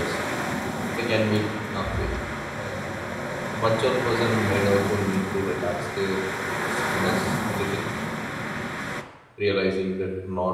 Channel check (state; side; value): identical; both; correlation 1.00